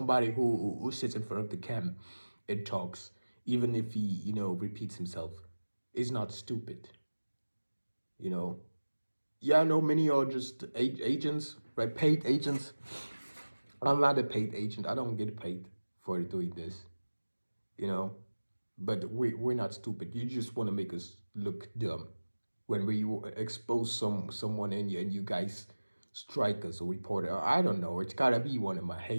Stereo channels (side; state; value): both; inverted; correlation -1.00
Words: who sits in front of the cam and talks, even if he repeats himself, is not stupid. You know, yeah, I know many are just agents, right? Paid agents. I'm not a paid agent. I don't get paid for doing this. You know, but we're not stupid. You just want to make us look dumb when we expose someone and you guys strike us or report it. I don't know. It's gotta be one of my